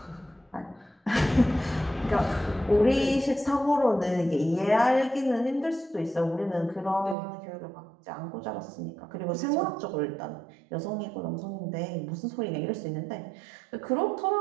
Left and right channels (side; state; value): left; drops out; at 7.2 s